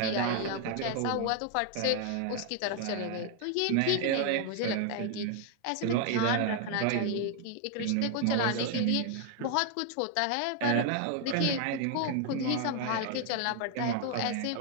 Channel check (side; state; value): both; different; correlation 0.00